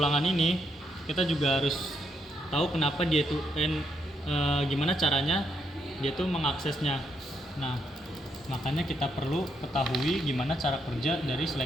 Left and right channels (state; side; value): normal; both; correlation 0.77